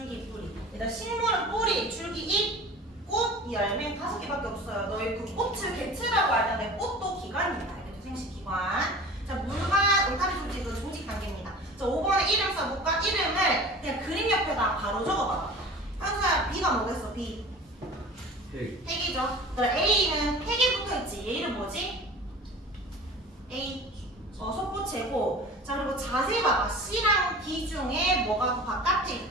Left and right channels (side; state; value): both; normal; correlation 0.39